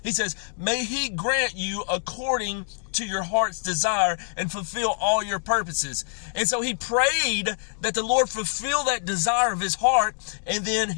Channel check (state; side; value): silent; right; digital silence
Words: He says, may he grant you according to your heart's desire and fulfill all your purposes. And so he prayed that the Lord fulfill that desire of his heart. And then